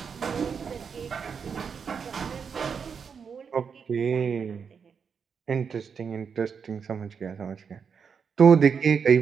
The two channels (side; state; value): left; quieter; 6.4 dB